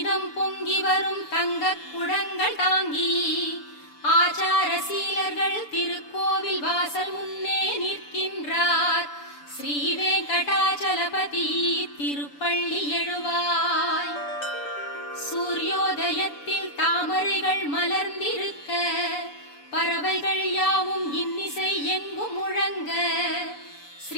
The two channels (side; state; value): right; late; 6.9 ms